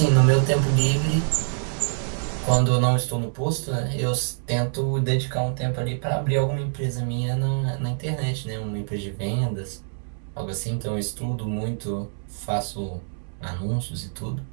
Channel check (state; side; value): silent; left; 61 dB below the other